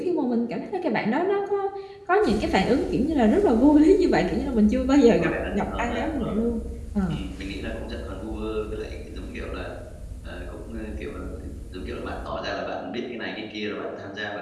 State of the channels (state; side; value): identical; both; correlation 1.00